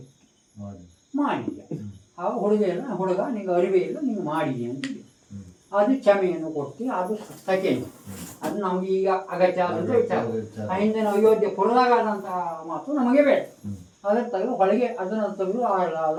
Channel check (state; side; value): identical; both; correlation 1.00